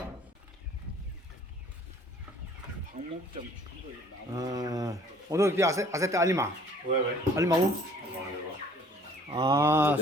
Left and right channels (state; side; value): normal; both; correlation 0.55